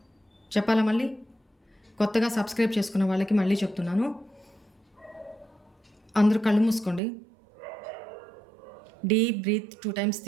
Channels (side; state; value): left; drops out; at 7.0 s